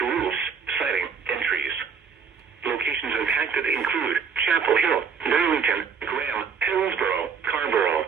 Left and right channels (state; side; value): quieter; left; 6.3 dB